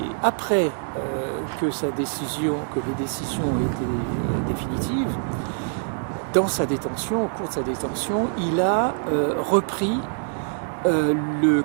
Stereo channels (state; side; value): silent; left; digital silence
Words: après que les décisions ont été définitives, dans sa détention, au cours de sa détention, il a repris le